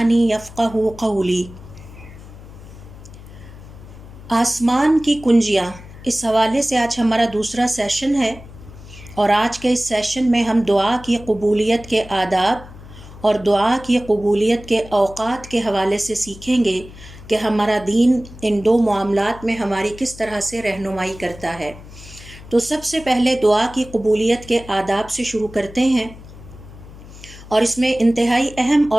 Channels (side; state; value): left; noise; hum, 17 dB below the sound